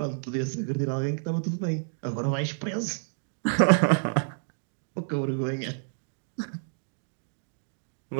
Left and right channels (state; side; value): silent; left; digital silence